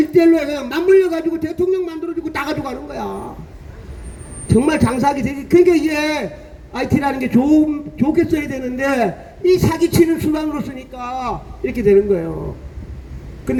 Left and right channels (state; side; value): identical; both; correlation 1.00